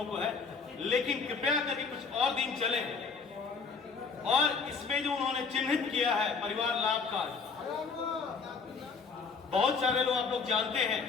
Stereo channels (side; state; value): right; quieter; 5.0 dB